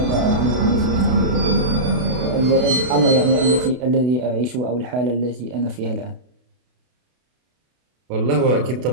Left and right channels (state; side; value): late; left; 32 ms